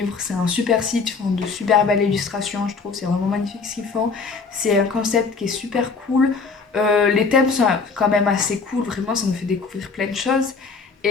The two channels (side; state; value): right; quieter; 4.7 dB